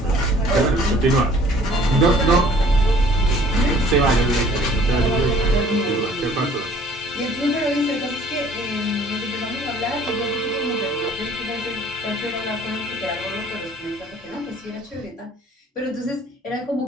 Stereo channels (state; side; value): normal; both; correlation 0.55